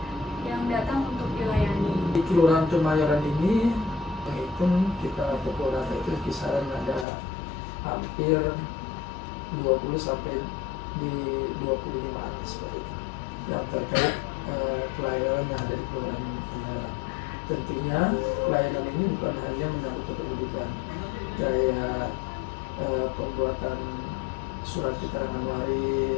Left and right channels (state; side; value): drops out; right; at 7.1 s